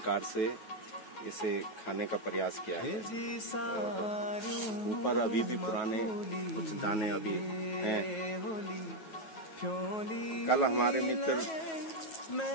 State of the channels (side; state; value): right; late; 9.3 ms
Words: से इसे खाने का प्रयास किया है। ऊपर अभी भी पुराने कुछ दाने अभी हैं। कल हमारे मित्र